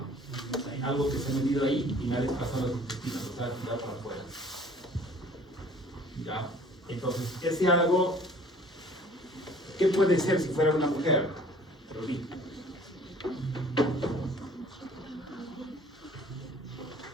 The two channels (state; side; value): normal; both; correlation 0.52